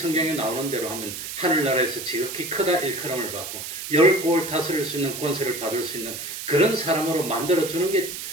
나오는 대로 하면 하늘나라에서 지극히 크다 일컬음을 받고 10골 다스릴 수 있는 권세를 받을 수 있는 그런 사람으로 만들어주는 게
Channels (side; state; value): right; noise; hiss, 7 dB below the sound